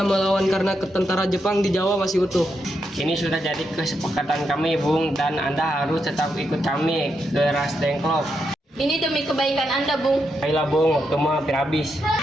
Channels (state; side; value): normal; both; correlation 0.83